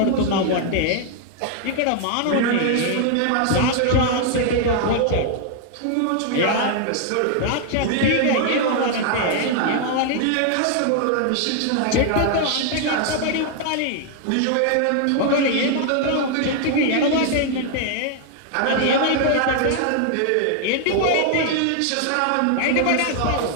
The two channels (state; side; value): different; both; correlation 0.00